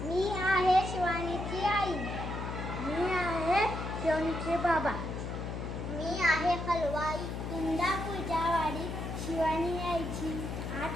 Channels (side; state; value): left; noise; hum, 5 dB below the sound